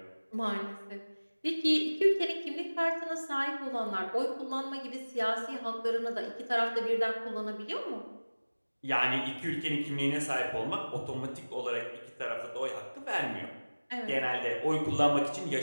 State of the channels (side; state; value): both; inverted; correlation -1.00